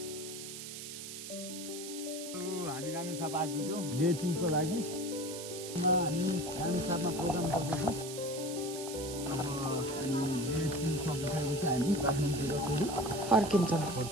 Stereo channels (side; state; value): right; noise; hiss, 9 dB below the sound